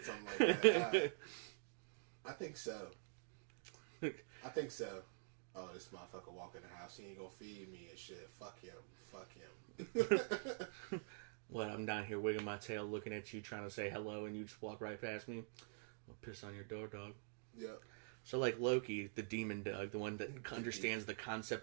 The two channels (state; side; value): silent; left; digital silence